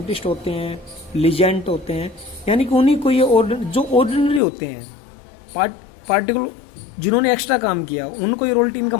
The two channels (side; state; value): right; drops out; at 4.4 s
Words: होते हैं, लीजेंड होते हैं, यानी कि उन्हीं को ये जो ऑर्डिनरी होते हैं, पार्टिकुलर जिन्होंने एक्स्ट्रा काम किया, उनको ये रॉयल्टी